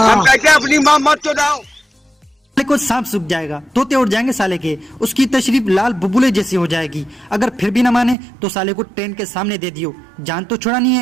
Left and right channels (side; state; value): left; drops out; at 8.2 s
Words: कहते हैं अपनी माँ मत चोदाओ। साले को सांप सूख जाएगा, तोते उड़ जाएंगे साले के, उसकी तशरीफ लाल बुबुले जैसी हो जाएगी। अगर फिर भी ना माने तो साले को ट्रेन के सामने दे दियो, जान तो छुड़ानी